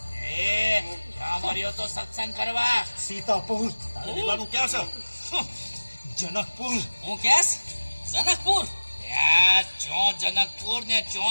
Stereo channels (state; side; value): inverted; both; correlation -1.00